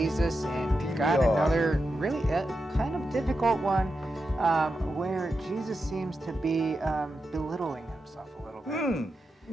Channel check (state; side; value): normal; both; correlation 0.89